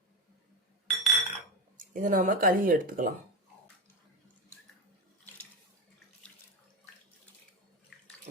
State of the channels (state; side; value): normal; both; correlation 0.17